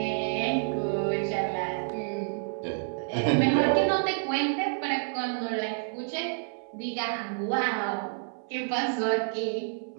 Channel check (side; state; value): left; silent; 58 dB below the other